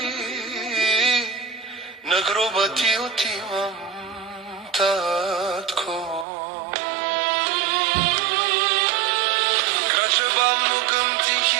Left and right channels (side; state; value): left; drops out; at 6.2 s